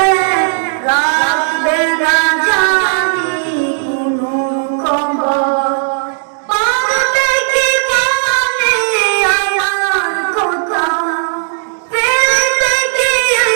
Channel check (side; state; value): left; silent; digital silence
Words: রাখবে না জানি কোনো খবর। পড়বে কি মনে আমার কথা, ফেলবে কি